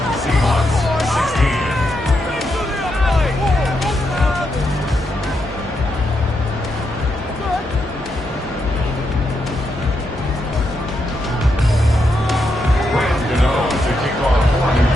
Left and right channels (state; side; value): normal; both; correlation 0.82